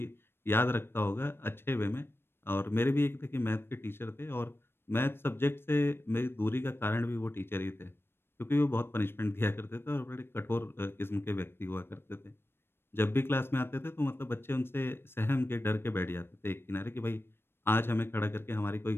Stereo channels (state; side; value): late; right; 0.11 ms